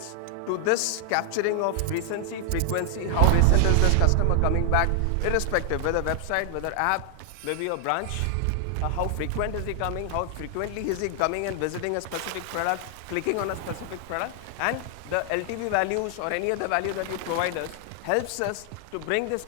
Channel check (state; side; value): different; both; correlation 0.00